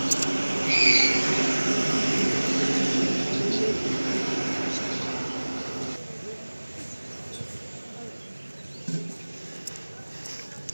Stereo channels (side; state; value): both; inverted; correlation -1.00